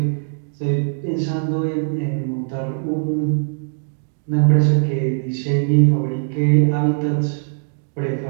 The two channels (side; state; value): left; silent; digital silence